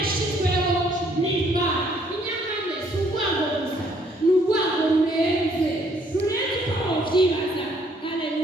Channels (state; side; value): normal; both; correlation 0.65